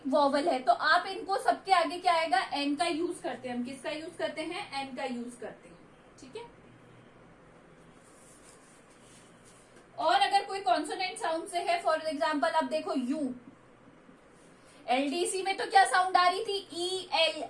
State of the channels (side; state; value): both; identical; correlation 1.00